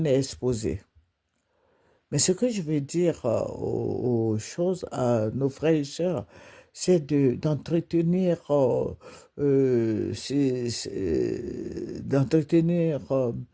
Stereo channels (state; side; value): identical; both; correlation 1.00